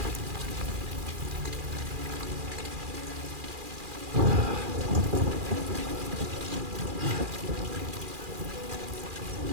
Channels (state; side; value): late; left; 2.4 ms